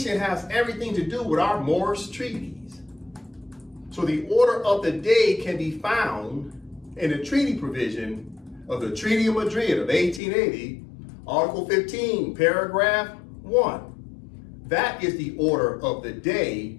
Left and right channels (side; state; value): right; drops out; at 10.2 s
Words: has everything to do with our Moorish treaties. So the order of the day can be found in the treaty provision of the Treaty of Madrid of 1880, Article 15, Paragraph 1. That is the order of the day